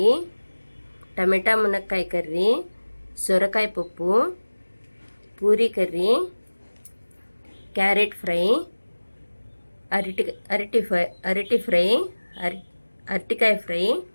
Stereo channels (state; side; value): inverted; both; correlation -1.00